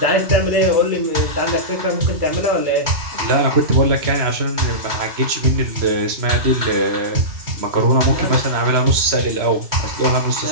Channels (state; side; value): late; left; 3.0 ms